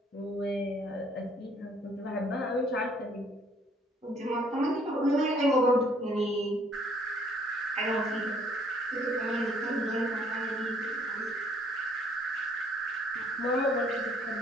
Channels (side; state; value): both; normal; correlation 0.62